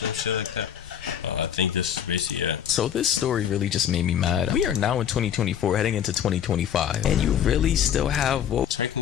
shit like that. I think this is basically it. So this story really just made me mad. We are now in 2024, heading into 2025, and you really still have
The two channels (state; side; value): quieter; right; 9.3 dB